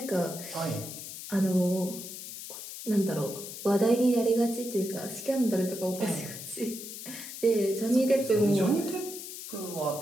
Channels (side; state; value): left; noise; hiss, 10 dB below the sound